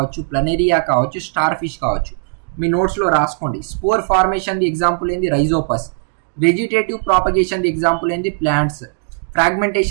ప్లనేరియా కావచ్చు, స్టార్ ఫిష్ కావచ్చు. మీ నోట్స్లో రాసుకోండి. స్పోర్ ఫార్మేషన్ ఎగ్జాంపుల్ ఏంది, రైజోపస్. వెజిటేటివ్ ప్రాపగేషన్ ఎగ్జాంపుల్ ఏంది, ప్లాంట్స్.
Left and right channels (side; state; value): left; silent; digital silence